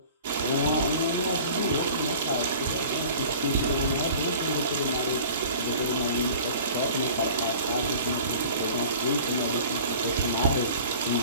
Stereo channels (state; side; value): inverted; both; correlation -0.44